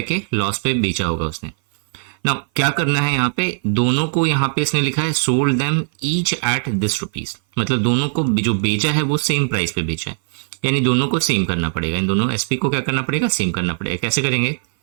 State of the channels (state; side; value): silent; left; 58 dB below the other